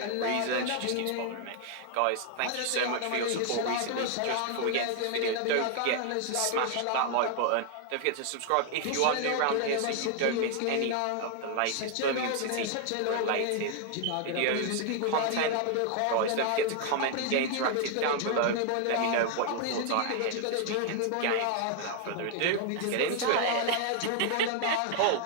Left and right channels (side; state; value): both; different; correlation 0.00